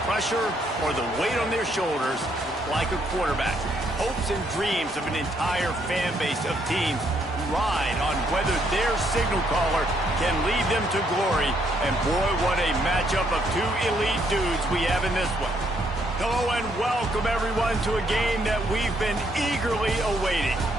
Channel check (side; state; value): both; normal; correlation 0.72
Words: pressure or the weight on their shoulders like a quarterback. Hopes and dreams of an entire fan base of teams ride on whether their signal caller can lead them to glory. And boy, what a matchup of two elite dudes we have in this one. Hello and welcome everyone to a game that we've been eagerly awaiting.